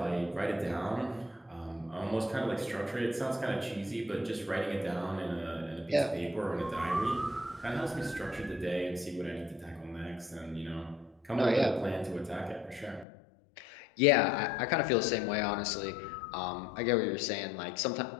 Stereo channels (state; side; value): drops out; right; at 13.1 s